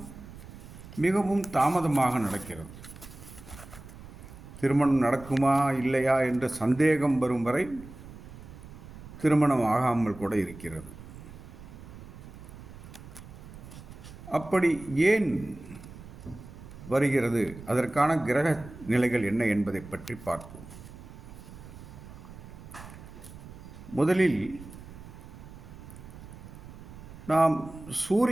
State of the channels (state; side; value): noise; right; rumble, 16 dB below the sound